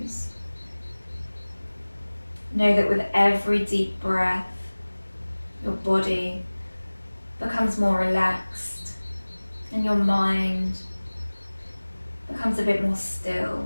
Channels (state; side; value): inverted; both; correlation -1.00